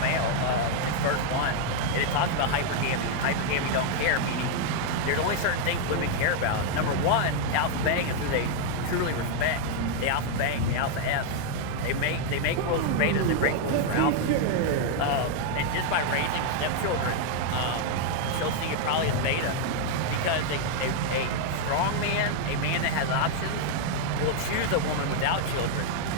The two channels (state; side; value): different; both; correlation 0.00